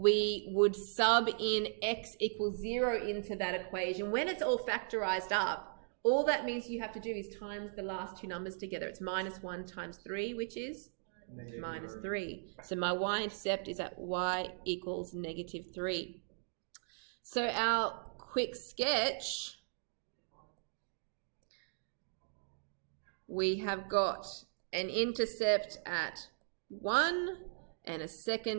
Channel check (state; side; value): silent; left; digital silence